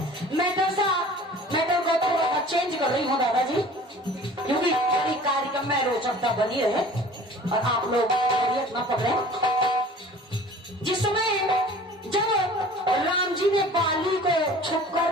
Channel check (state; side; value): normal; both; correlation 0.45